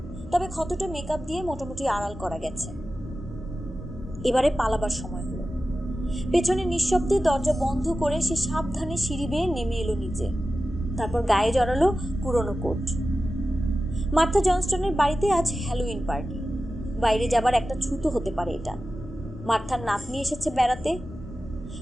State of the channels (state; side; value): normal; both; correlation 0.94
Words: তবে ক্ষতটা মেকআপ দিয়ে মোটামুটি আড়াল করা গেছে। এবারে পালাবার সময় হলো। পেছনে নিঃশব্দে দরজা বন্ধ করে সে সাবধানে সিঁড়ি বেয়ে নেমে এলো নিচে। তারপর গায়ে জড়ালো পুরনো কোট। মার্থা জনস্টনের বাড়িতে আজ হ্যালোউইন পার্টি। বাইরে যাবার একটা ছুতো হতে পারে এটা। মার্থার নাতনি এসেছে বেড়াতে,